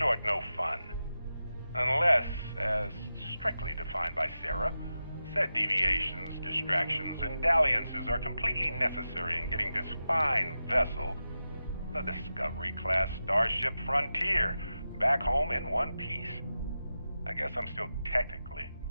no fun. Unless, as strictly defined by Sarah, said deviations, distractions, and dalliances are completely necessary in getting this fine vessel, the Discovery-class Starship Frontier, back home in one piece. I guess I'm still technically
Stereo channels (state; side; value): inverted; both; correlation -0.91